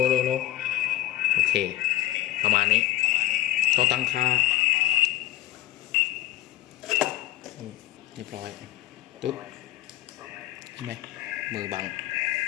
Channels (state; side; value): quieter; right; 14.8 dB